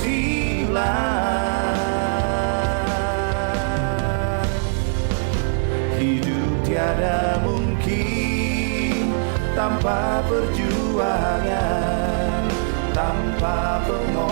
Hidup tiada mungkin tanpa perjuangan, tanpa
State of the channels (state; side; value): silent; left; digital silence